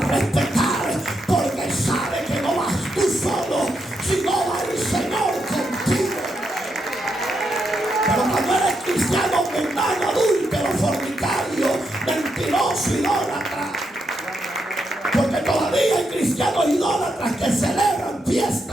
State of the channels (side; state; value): both; normal; correlation 0.82